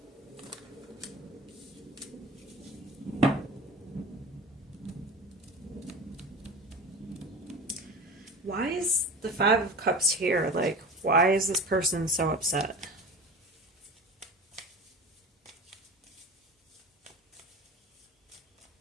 Why is the Five of Cups here? Like, why is this person so upset?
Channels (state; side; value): normal; both; correlation 0.33